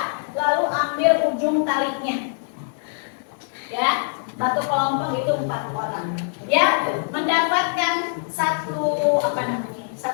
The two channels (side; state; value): right; silent; 63 dB below the other